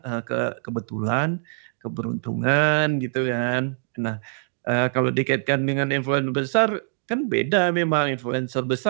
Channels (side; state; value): left; silent; digital silence